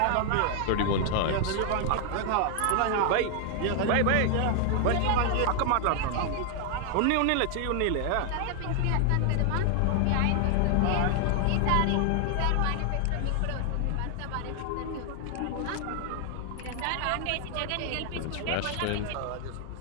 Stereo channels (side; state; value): both; different; correlation 0.00